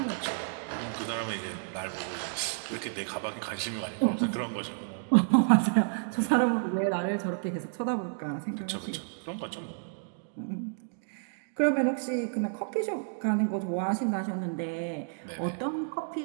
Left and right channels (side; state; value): left; silent; digital silence